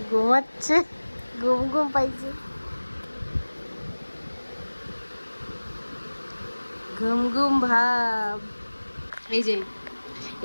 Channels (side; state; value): both; inverted; correlation -1.00